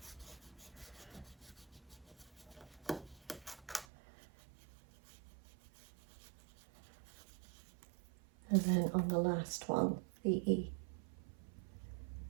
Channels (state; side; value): drops out; left; at 3.9 s